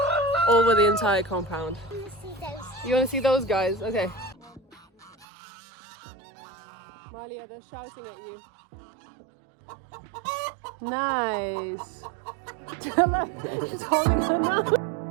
over the entire compound. You want to see those guys? Okay. Malia, they're shouting at you. Nice. It's holding her now.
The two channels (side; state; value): left; drops out; at 5.2 s